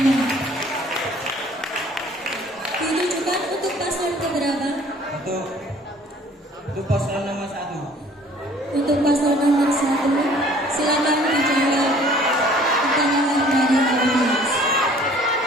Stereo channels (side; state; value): both; normal; correlation 0.54